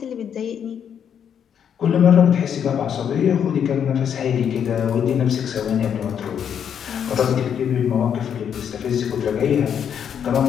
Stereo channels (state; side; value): quieter; right; 8.3 dB